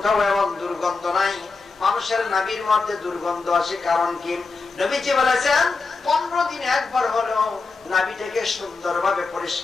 এমন দুর্গন্ধ নাই। মানুষের নাভির মধ্যে দুর্গন্ধ আসে কারণ কি? নবীজি বলেছেন 15 দিনে একবার হলো নাভিটাকে সুন্দরভাবে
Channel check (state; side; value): quieter; right; 4.2 dB